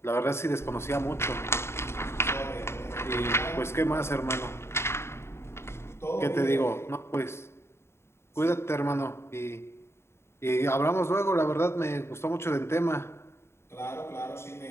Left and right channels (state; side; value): late; right; 0.12 ms